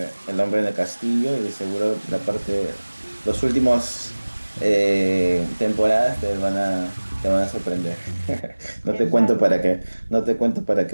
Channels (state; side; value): inverted; both; correlation -1.00